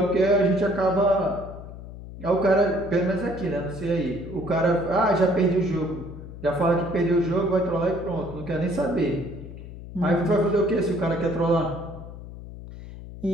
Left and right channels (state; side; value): noise; left; hum, 13 dB below the sound